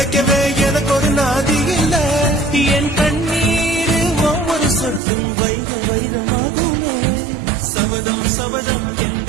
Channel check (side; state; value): left; drops out; at 5.0 s